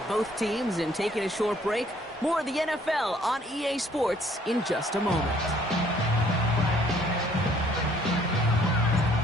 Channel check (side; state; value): both; normal; correlation 0.62